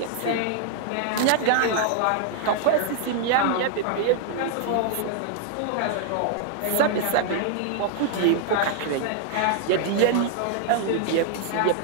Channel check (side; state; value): both; different; correlation -0.01